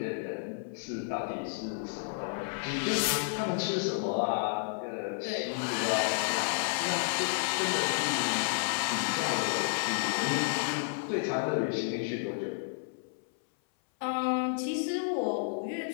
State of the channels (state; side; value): silent; right; 57 dB below the other